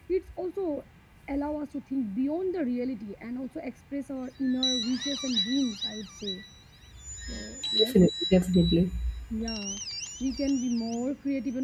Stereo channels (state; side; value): identical; both; correlation 1.00